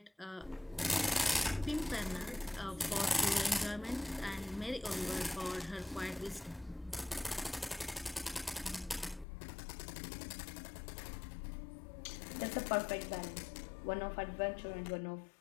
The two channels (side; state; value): right; drops out; at 9.2 s